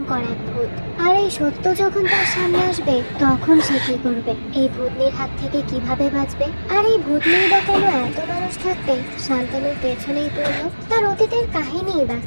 এক ভূত। আর এই সত্য যখন তার সামনে আসবে তখন সে কি করবে? এই ভূতনির হাত থেকে কিভাবে বাঁচবে? আর এই ভূতনির বা কেন এত মানুষ থাকবে শান্তনুর পেছনেই পড়লো? তার অতীতের কাহিনীই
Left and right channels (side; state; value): both; inverted; correlation -1.00